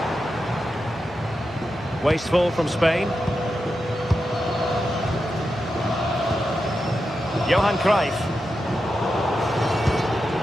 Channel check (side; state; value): both; normal; correlation 0.88